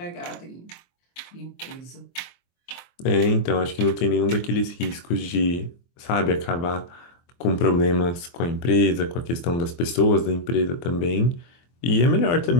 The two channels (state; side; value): late; right; 23 ms